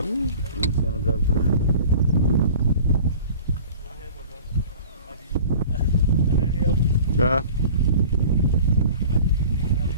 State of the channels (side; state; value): both; inverted; correlation -0.44